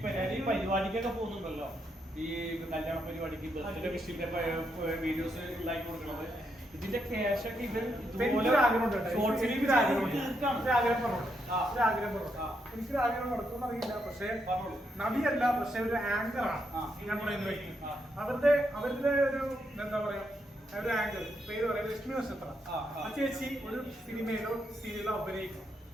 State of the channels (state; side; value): normal; both; correlation 0.80